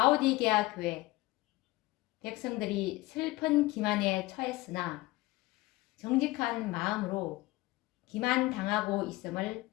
교회 백성들이 슬픈 기만에 처했으나 정직한 마음으로 기만당하고 있음을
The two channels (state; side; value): quieter; right; 19.7 dB